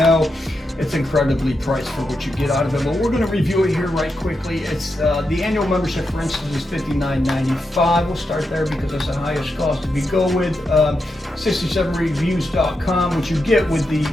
It's incredibly priced for what you get out of it, but we're going to review it here right quickly. It's the annual membership, for instance, is $59.95. We'll start there because that's the highest cost. If you go with 67reviews.com, which you get with the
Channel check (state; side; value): normal; both; correlation 0.86